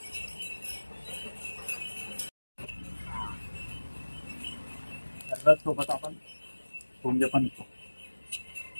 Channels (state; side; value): inverted; both; correlation -1.00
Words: सोबत आपण पुंज पण